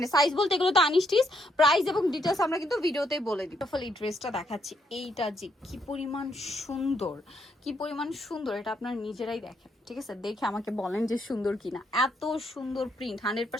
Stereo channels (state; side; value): normal; both; correlation 0.75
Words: সাইজ বলতে এগুলো তো আনস্টিচ, প্রাইস এবং ডিটেলস আমরা কিন্তু ভিডিওতে বলে দিই। ফলে এই ড্রেসটা দেখাচ্ছি, এইটা যে কি পরিমাণ সুন্দর, কি পরিমাণ সুন্দর, এটা আপনারা নিজেরাই দেখেন, ঠিক আছে? দেখে আমাকে বলেন যে সুন্দর কিনা। এত সুন্দর প্রিন্ট,